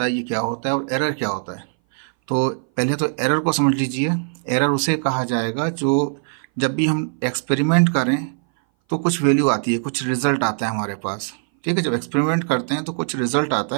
है ये क्या होता है और एरर क्या होता है। तो पहले तो एरर को समझ लीजिए। एरर उसे कहा जाएगा जो जब भी हम एक्सपेरिमेंट करें तो कुछ वैल्यू आती है, कुछ रिजल्ट आता है हमारे पास। ठीक है, जब एक्सपेरिमेंट करते हैं तो कुछ रिजल्ट आता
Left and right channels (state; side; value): silent; left; 59 dB below the other